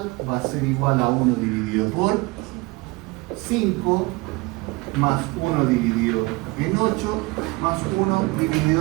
va a ser igual a 1 dividido por 5 más 1 dividido en 8 más 1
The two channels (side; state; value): left; quieter; 24.0 dB